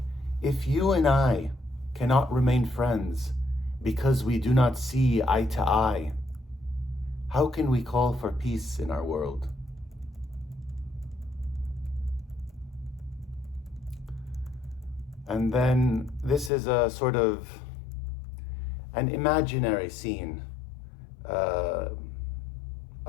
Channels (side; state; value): right; drops out; at 16.5 s